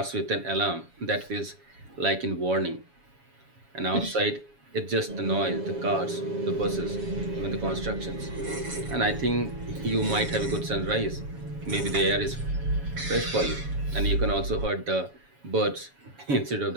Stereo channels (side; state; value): left; late; 7.2 ms